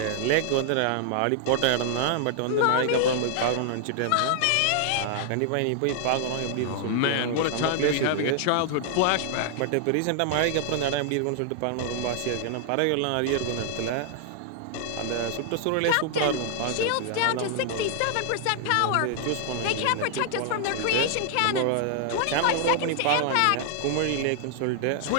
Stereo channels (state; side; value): different; both; correlation 0.00